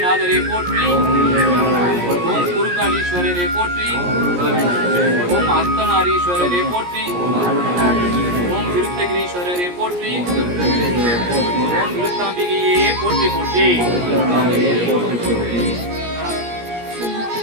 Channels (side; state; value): left; late; 17 ms